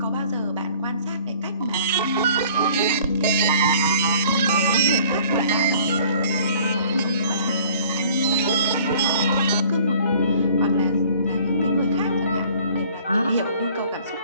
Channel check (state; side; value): inverted; both; correlation -0.53